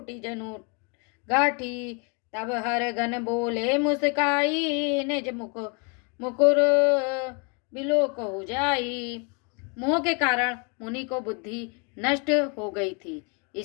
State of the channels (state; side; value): quieter; right; 34.1 dB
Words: जनु गाठी। तब हर गन बोले मुस्काई, निज मुकुर बिलोक हो जाई। मोह के कारण मुनि को बुद्धि नष्ट हो गई थी।